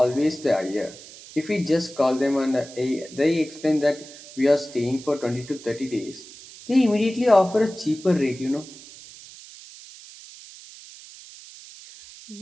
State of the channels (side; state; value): right; noise; hiss, 18 dB below the sound